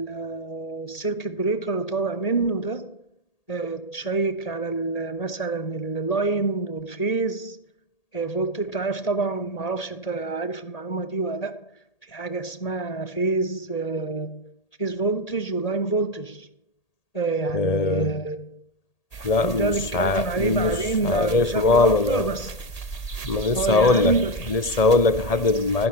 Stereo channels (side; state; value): right; late; 1.8 ms